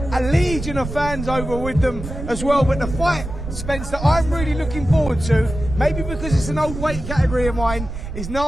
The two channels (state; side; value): noise; right; rumble, 8 dB below the sound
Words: a legion of fans over with them as well. But the fight, Spence, that I'm really looking forward to, maybe because it's an old weight category of mine, is